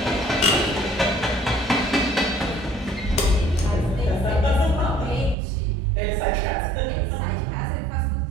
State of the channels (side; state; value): left; drops out; at 5.4 s